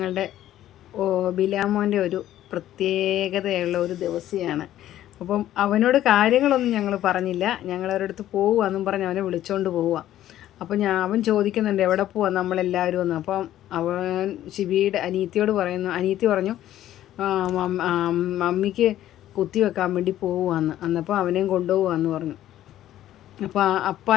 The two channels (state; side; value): quieter; right; 12.8 dB